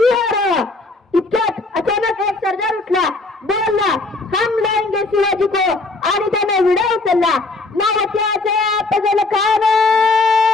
हार इतक्यात अचानक एक सरदार उठला बोलला हम लाएंगे शिवाजी को आणि त्याने विडा उचलला नावत्याचे पगल खान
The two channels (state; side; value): quieter; right; 3.3 dB